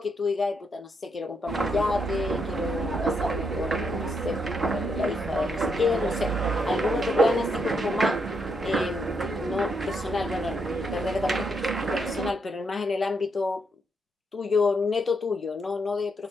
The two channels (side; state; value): both; normal; correlation 0.78